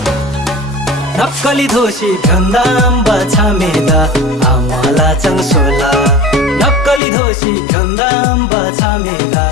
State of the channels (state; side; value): drops out; right; at 7.0 s